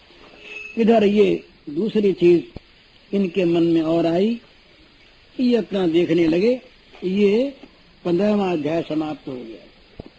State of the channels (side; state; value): both; identical; correlation 1.00